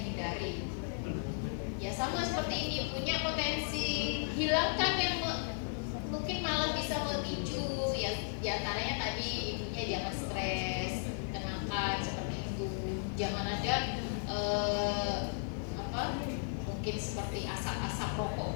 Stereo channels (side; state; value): right; silent; digital silence